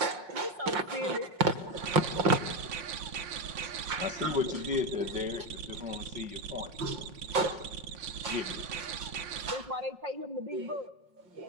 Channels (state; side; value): late; left; 5.8 ms